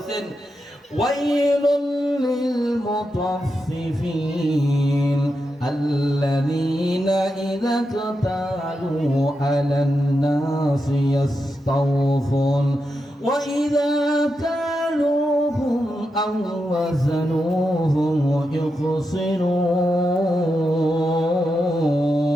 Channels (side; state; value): both; normal; correlation 0.87